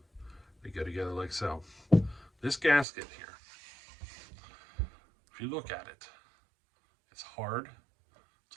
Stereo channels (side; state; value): left; drops out; at 2.9 s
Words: They go together like so. This gasket here, if you look at it, it's hard.